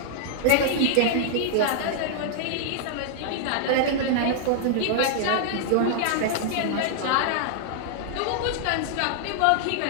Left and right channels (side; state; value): both; different; correlation -0.01